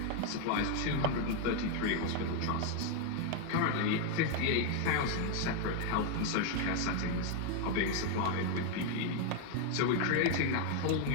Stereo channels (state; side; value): different; both; correlation 0.00